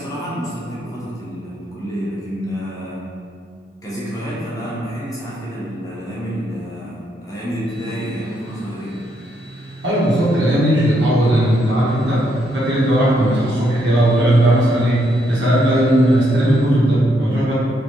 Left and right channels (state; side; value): normal; both; correlation 0.76